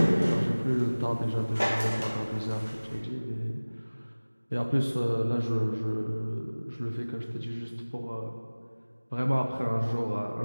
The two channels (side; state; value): both; inverted; correlation -1.00